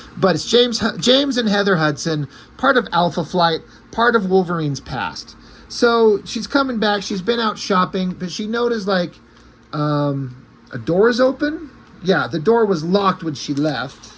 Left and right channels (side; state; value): both; identical; correlation 1.00